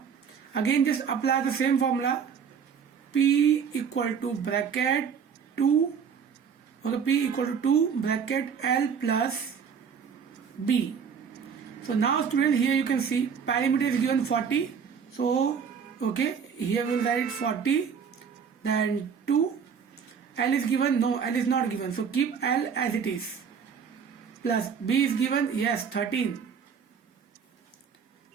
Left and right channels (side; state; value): left; quieter; 6.8 dB